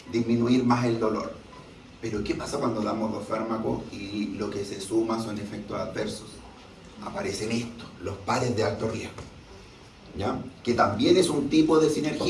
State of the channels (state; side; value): identical; both; correlation 1.00